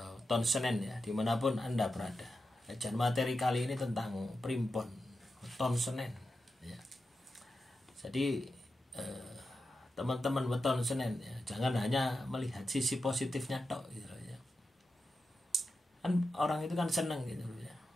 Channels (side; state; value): both; normal; correlation 0.90